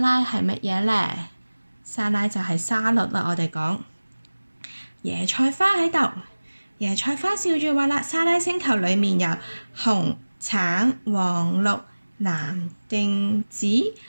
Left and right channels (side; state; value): both; inverted; correlation -1.00